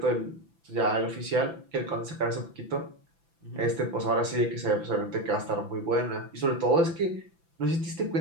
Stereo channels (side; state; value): left; late; 5.9 ms